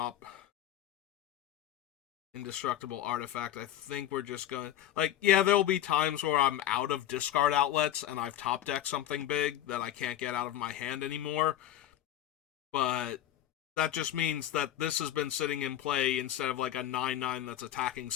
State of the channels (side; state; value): right; quieter; 12.4 dB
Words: indestructible artifact. I think we're just gonna... Like, yeah, there'll be times where I'm out of discard outlets and I've top decked something big that I can't get out of my hand anymore. But that just means that this has been sitting in play instead of like a 9/9 that's attacking